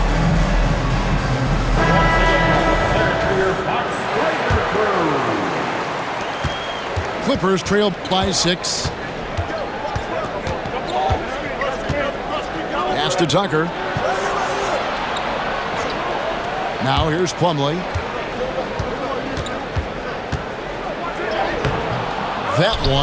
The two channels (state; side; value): identical; both; correlation 1.00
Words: Clippers trail by 6. Pass to Tucker. Now here's Plumlee. That